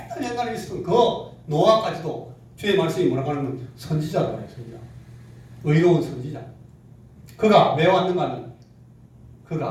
있었던 그 노아까지도 주의 말씀이 뭐라고 하냐면 선지자라고 해요. 선지자. 의로운 선지자. 그가 왜 왔는가 하면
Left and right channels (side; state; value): both; identical; correlation 1.00